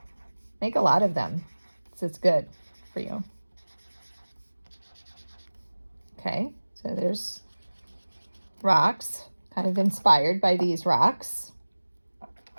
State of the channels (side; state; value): both; inverted; correlation -1.00